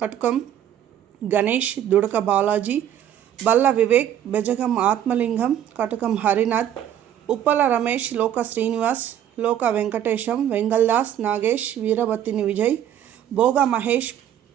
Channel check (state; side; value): quieter; left; 10.4 dB